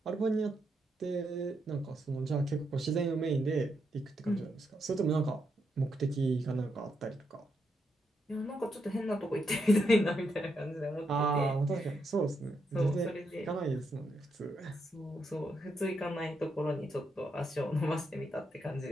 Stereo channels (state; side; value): normal; both; correlation 0.81